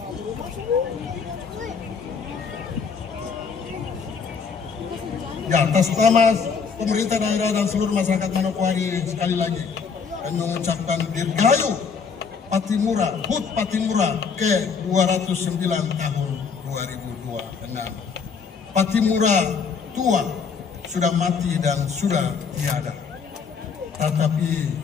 Ya, atas nama pemerintah daerah dan seluruh masyarakat Manokwari sekali lagi kami mengucapkan Dirgahayu Patimura, HUT Patimura ke 209 tahun 2026. Patimura tua sudah mati dan sudah tiada, tetapi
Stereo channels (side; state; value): right; quieter; 5.7 dB